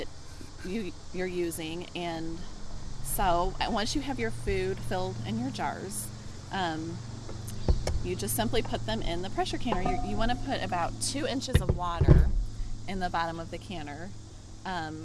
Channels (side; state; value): both; identical; correlation 1.00